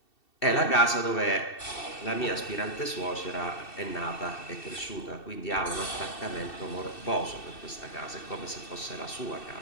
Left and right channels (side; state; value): right; late; 2.7 ms